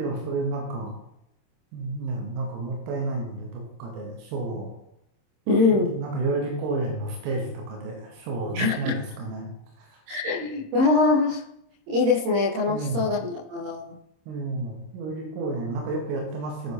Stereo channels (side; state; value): left; late; 26 ms